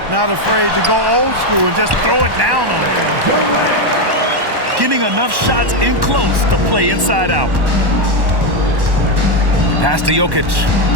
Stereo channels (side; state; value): left; late; 1.1 ms